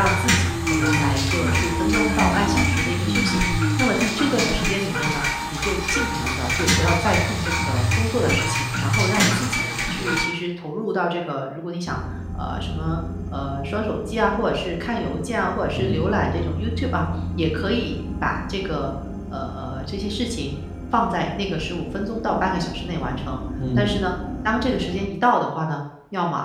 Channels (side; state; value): both; identical; correlation 1.00